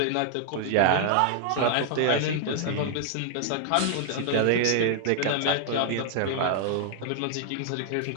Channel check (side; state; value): both; different; correlation 0.00